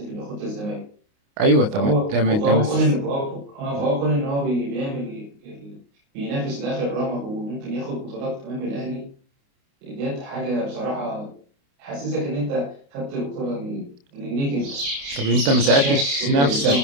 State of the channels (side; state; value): left; late; 29 ms